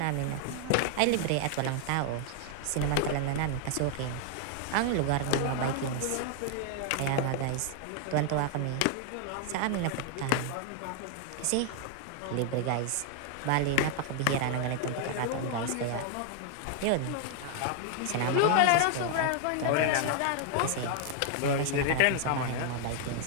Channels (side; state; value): both; different; correlation 0.00